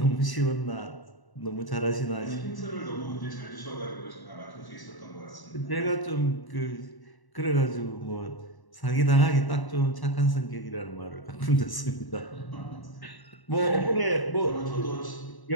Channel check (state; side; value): late; right; 1.1 ms